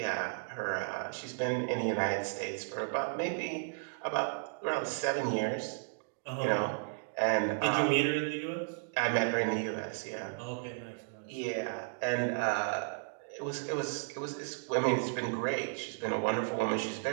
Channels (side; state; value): left; silent; digital silence